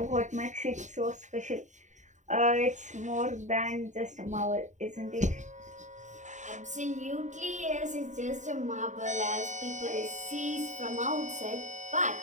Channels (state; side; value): late; left; 0.35 ms